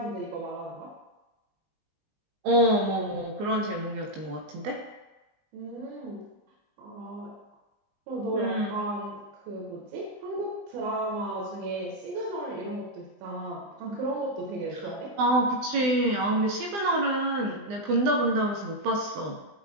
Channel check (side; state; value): left; late; 20 ms